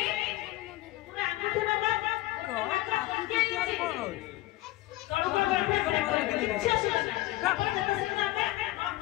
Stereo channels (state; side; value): quieter; right; 17.9 dB